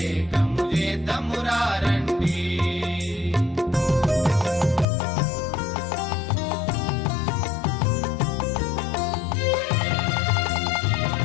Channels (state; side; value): drops out; right; at 4.9 s